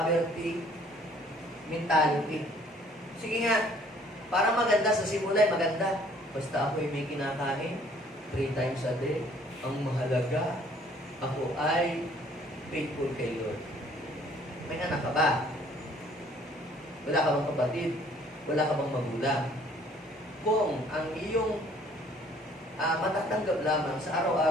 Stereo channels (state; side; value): normal; both; correlation 0.58